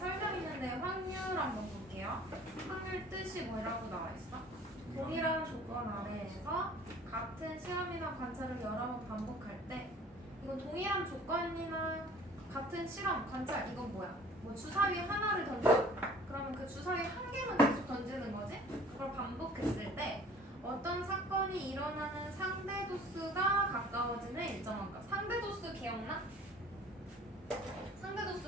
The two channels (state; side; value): normal; both; correlation 0.50